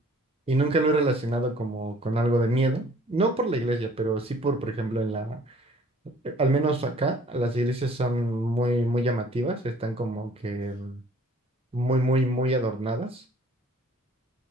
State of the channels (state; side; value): normal; both; correlation 0.55